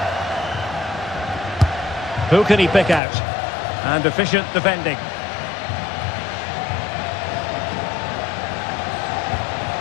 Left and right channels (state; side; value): drops out; right; at 3.0 s